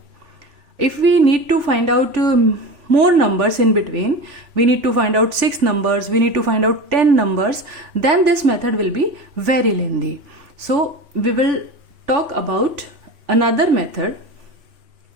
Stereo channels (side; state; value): left; late; 3.4 ms